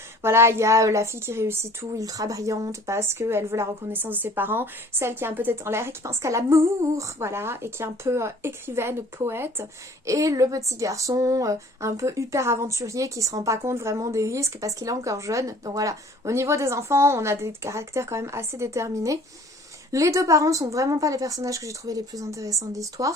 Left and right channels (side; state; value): both; normal; correlation 0.52